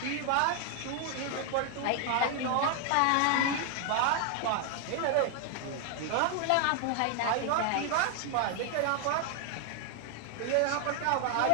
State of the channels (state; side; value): different; both; correlation 0.01